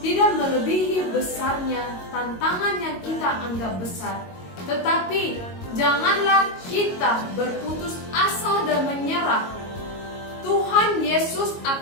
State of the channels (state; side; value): late; right; 22 ms